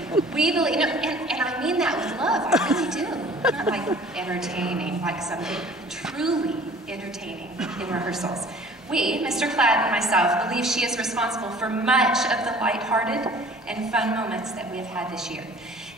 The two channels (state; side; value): normal; both; correlation 0.49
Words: We believe, and I mean that with love, I really do. Not like entertaining, like something truly entertaining in rehearsals. We, Mr. Klatt and myself, believe she is responsible for much of the lighthearted and fun moments that we have had this year.